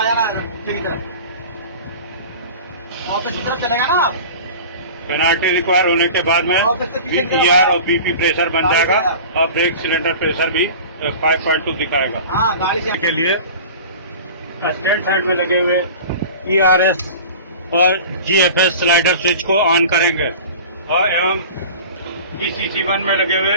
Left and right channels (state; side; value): inverted; both; correlation -0.38